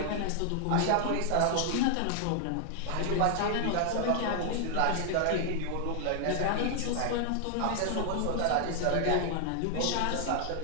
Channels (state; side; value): different; both; correlation 0.00